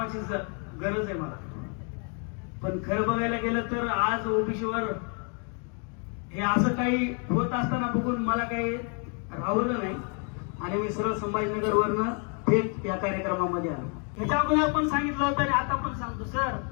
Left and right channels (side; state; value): right; quieter; 39.8 dB